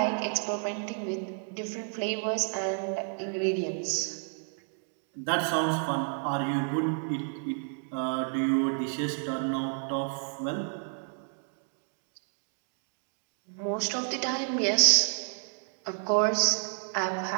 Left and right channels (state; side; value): silent; left; 56 dB below the other